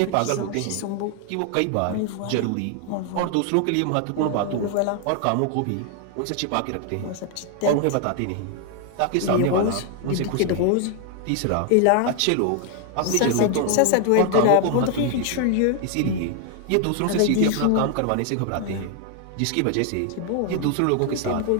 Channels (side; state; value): both; different; correlation 0.00